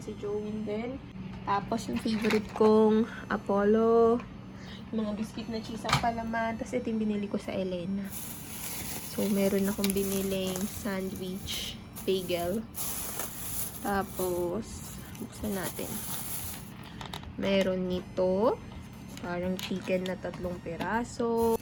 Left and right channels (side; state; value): both; identical; correlation 1.00